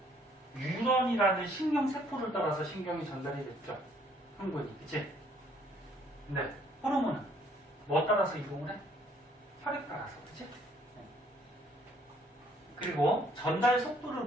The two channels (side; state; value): both; normal; correlation 0.63